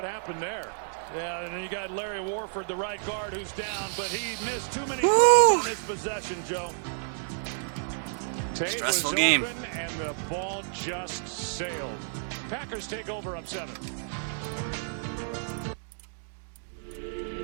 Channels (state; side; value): silent; left; digital silence